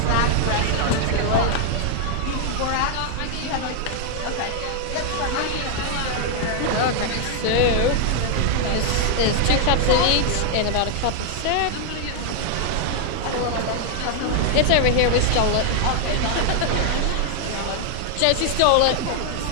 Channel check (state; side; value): different; both; correlation 0.00